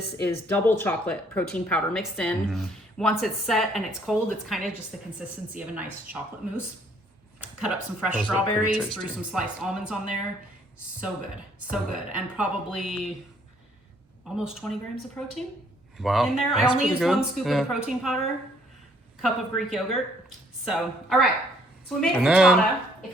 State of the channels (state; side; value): normal; both; correlation 0.64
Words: is double chocolate protein powder mixed in. Once it's set and it's cold, it's kind of just the consistency of a nice chocolate mousse. Cut up some fresh Those look pretty strawberries, tasty. threw some sliced almonds on there. So good, so good. And probably almost 20 grams of protein Wow. in there. I that's only pretty used good. one scoop of the protein powder, cup of Greek yogurt. So, all right. So we made a And then- frittata. If